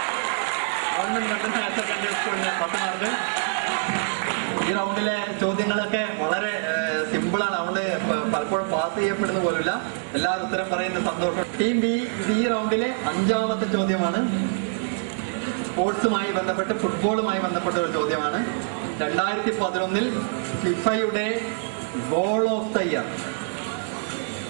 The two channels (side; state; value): left; silent; 57 dB below the other